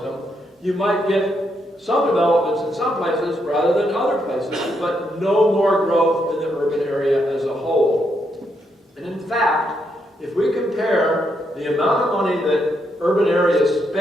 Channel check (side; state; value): both; normal; correlation 0.78